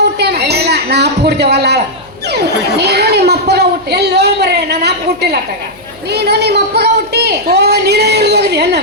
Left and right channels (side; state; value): left; noise; hum, 26 dB below the sound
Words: ಹುಟ್ಟ್ಯಾನ ನಾ ಅಪ್ಪ ಹುಡ್ತೇವಲ್ಲ ನೀನು ನಿಮ್ಮ ಅಪ್ಪಗ ಹುಟ್ಟಿ ಎಲ್ಲೋ ಮರೆ ನನ್ನ ಅಪ್ಪ ಹುಟ್ಟಿಲ್ಲ ಅತ್ತಾಗ ನೀನು ನಿಮ್ಮ ಅಪ್ಪಗ ಹುಟ್ಟಿ ನೀನೇ ಹೋಗಿದ್ಯ